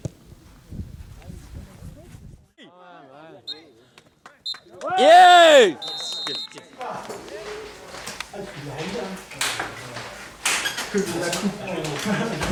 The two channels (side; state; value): both; identical; correlation 1.00